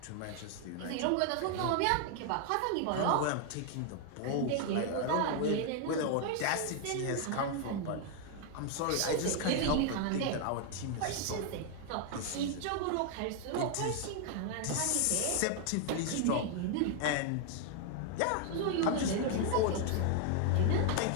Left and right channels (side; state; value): both; different; correlation 0.00